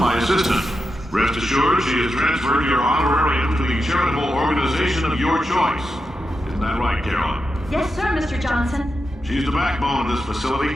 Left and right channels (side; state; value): both; normal; correlation 0.88